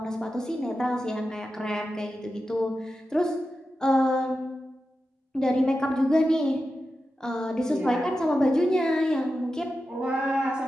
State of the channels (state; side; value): normal; both; correlation 0.91